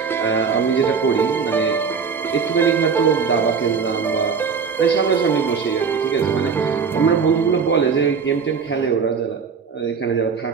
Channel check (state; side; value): quieter; left; 5.8 dB